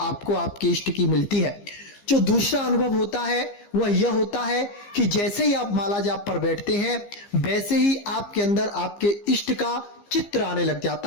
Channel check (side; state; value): right; late; 15 ms